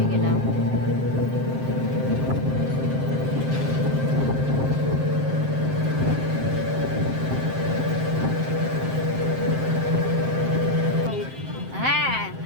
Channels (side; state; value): left; late; 7.6 ms